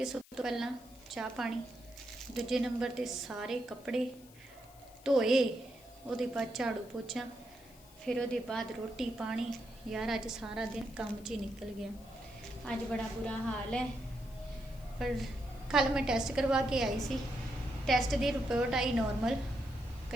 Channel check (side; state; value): left; noise; hiss, 24 dB below the sound